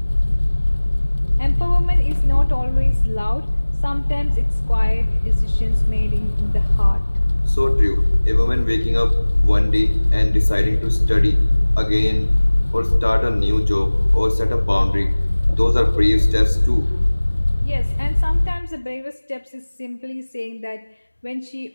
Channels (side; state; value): both; inverted; correlation -1.00